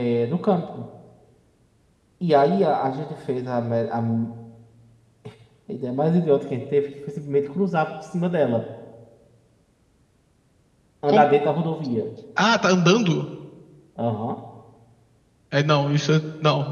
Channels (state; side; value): identical; both; correlation 1.00